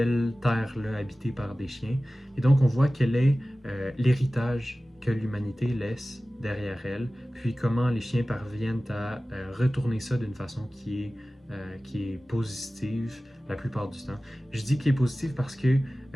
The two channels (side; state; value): both; normal; correlation 0.96